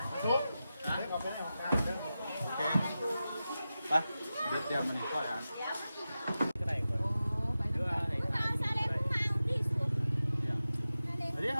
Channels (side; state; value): both; inverted; correlation -0.93